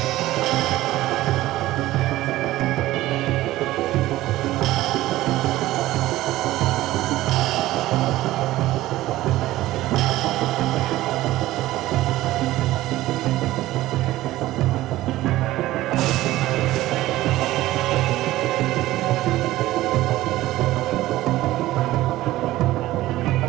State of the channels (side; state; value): left; quieter; 16.2 dB